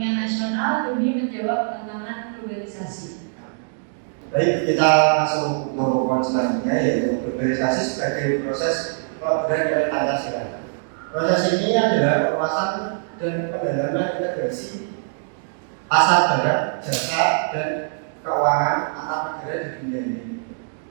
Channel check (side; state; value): left; silent; digital silence